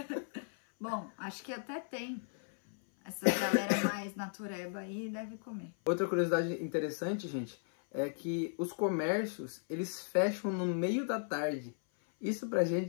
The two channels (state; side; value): silent; right; 54 dB below the other